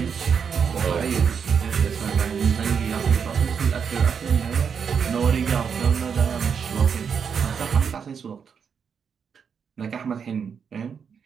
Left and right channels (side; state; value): left; quieter; 6.7 dB